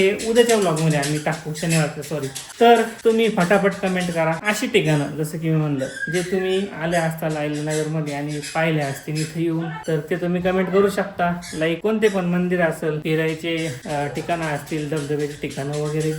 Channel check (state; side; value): identical; both; correlation 1.00